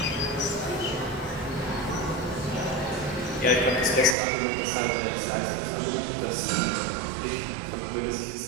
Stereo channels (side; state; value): left; drops out; at 4.2 s